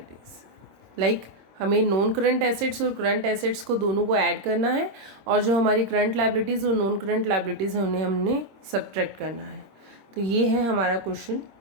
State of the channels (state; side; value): late; left; 26 ms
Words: Like हमें non current assets और current assets को दोनों को ऐड करना है, और जो हमारी करंट लाइबिलिटीज़ और नॉन करंट लाइबिलिटीज़ हैं उन्हें हमने सब्ट्रैक्ट करना है। तो ये है हमारा क्वेश्चन।